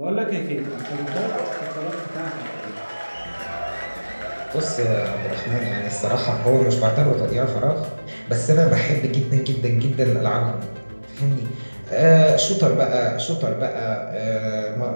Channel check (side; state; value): both; inverted; correlation -1.00